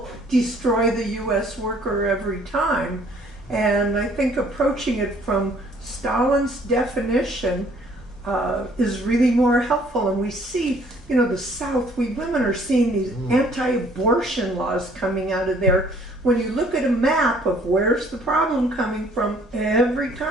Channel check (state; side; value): normal; both; correlation 0.59